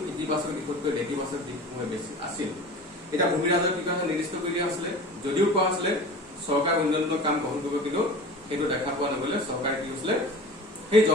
ইতিবাচক দিশতকৈ নেতিবাচক দিশসমূহ বেছি আছিল। এতিয়া ভূমি ৰাজহ কি কাৰণে নিৰ্দিষ্ট কৰি দিয়া হৈছিলে, যদিও কোৱা হৈছিলে চৰকাৰে উন্নয়নমূলক কাম গ্ৰহণ কৰিব, কিন্তু সেইটো দেখা পোৱা নগলে চৰকাৰে কি হৈছিলে, সেই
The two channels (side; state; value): both; normal; correlation 0.37